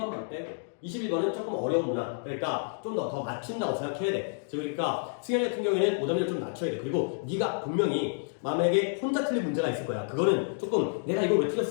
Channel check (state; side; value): silent; right; digital silence